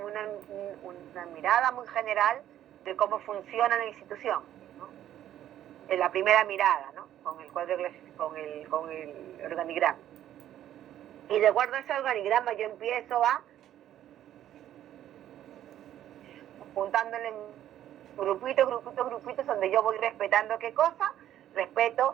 una mirada muy general de cómo funciona la institución, ¿no? En la primera mirada, ¿no?, con el cuadro con el organigrama. Y de acuerdo a ese organigrama yo empiezo a juntándole grupitos donde yo voy respetando qué cosa, respeto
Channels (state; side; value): quieter; left; 11.8 dB